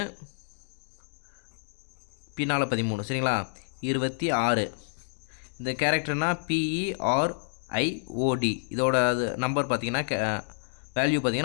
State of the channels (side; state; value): right; silent; digital silence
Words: பின்னால் 13 சரிங்களா. 26. இந்த கேரக்டர்னா PERIOD, இதோட நம்பர் பார்த்தீங்கன்னா வேல்யூ